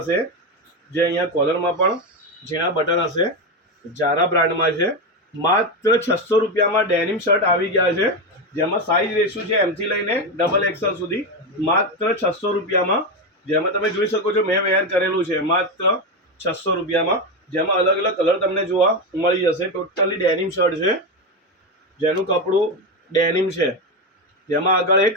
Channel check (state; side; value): normal; both; correlation 0.12